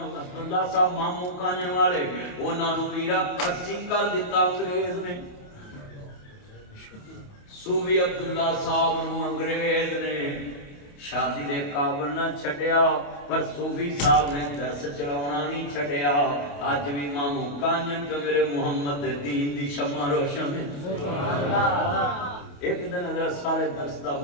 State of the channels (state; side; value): late; right; 28 ms